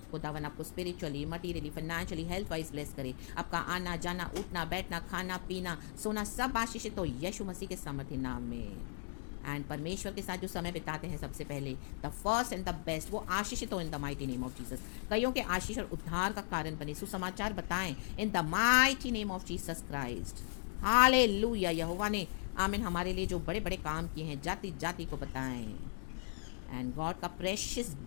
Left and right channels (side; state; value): right; silent; digital silence